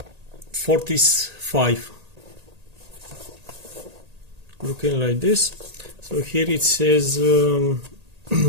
Fortis 5. Looking like this. So here it says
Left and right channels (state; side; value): late; left; 1.8 ms